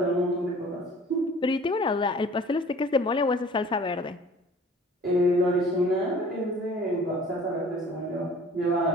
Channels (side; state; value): both; normal; correlation 0.49